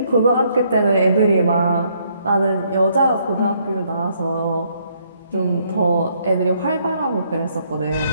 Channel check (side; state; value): both; inverted; correlation -0.70